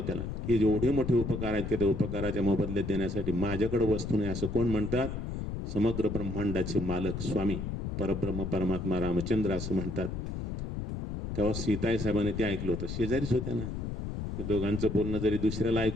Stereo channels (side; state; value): left; noise; rumble, 4 dB below the sound